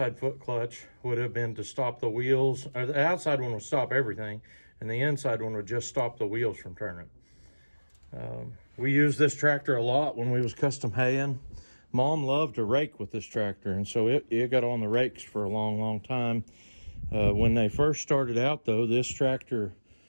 foot clutch would have been to stop the wheels. Or the outside one would stop everything, and the inside one would just stop the wheels from turning. We used this tractor a lot when we was custom haying. Mom loved to rake with this tractor, and so it got on the rakes for a long, long time. When they first started out, though, this tractor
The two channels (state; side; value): inverted; both; correlation -1.00